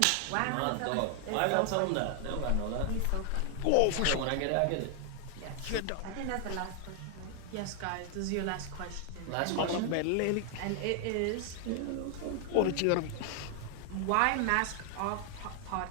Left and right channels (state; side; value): different; both; correlation 0.00